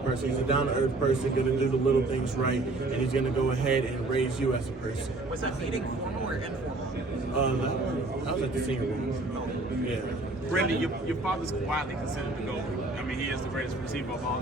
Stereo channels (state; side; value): quieter; left; 3.0 dB